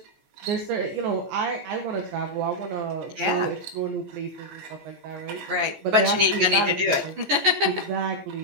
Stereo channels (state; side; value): late; left; 14 ms